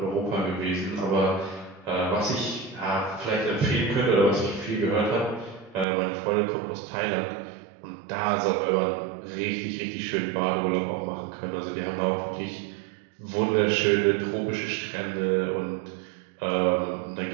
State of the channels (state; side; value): drops out; left; at 5.9 s